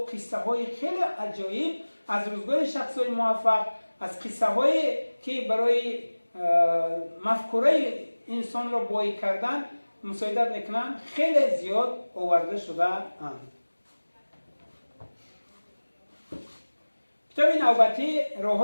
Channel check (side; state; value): both; inverted; correlation -1.00